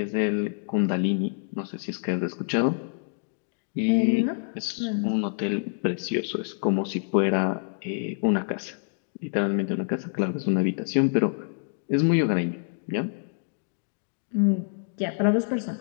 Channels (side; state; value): right; silent; digital silence